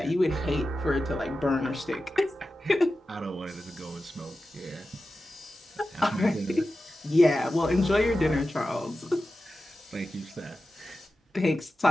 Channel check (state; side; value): normal; both; correlation 0.93